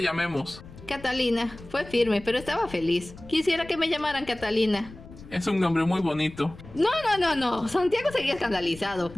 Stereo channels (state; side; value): noise; left; rumble, 18 dB below the sound